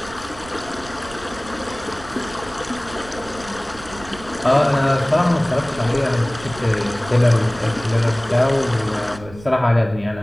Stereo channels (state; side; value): noise; right; rumble, 18 dB below the sound